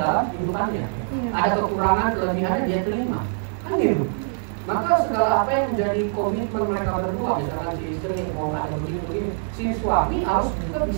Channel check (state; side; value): silent; left; digital silence